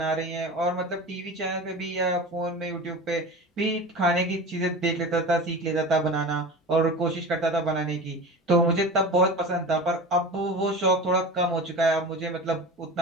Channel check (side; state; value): both; normal; correlation 0.31